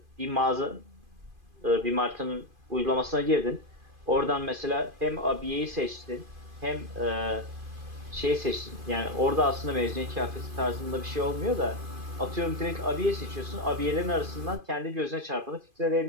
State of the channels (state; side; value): late; left; 2.5 ms